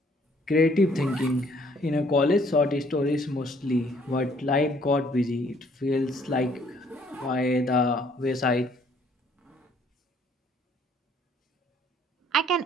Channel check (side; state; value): both; normal; correlation 0.63